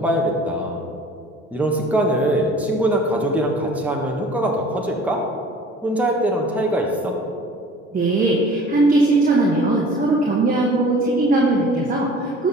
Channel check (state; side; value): normal; both; correlation 0.47